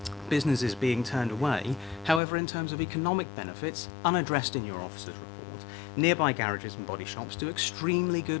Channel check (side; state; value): right; drops out; at 2.2 s